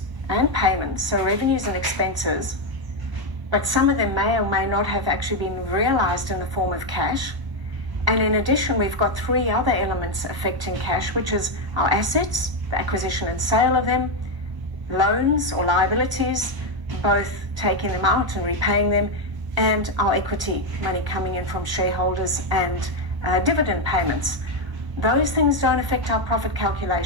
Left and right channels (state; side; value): late; left; 1.0 ms